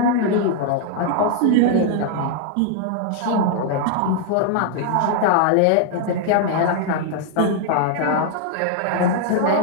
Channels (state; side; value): different; both; correlation 0.00